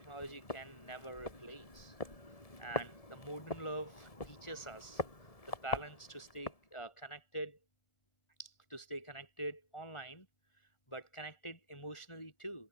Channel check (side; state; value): right; late; 1.7 ms